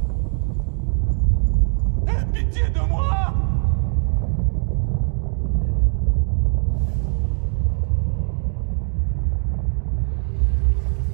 Aie pitié de moi!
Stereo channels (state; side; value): silent; left; 56 dB below the other